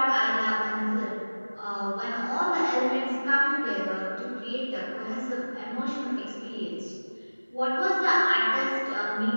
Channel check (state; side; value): inverted; both; correlation -1.00